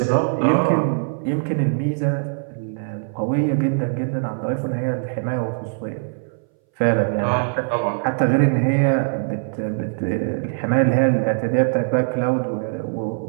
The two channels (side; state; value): left; silent; 61 dB below the other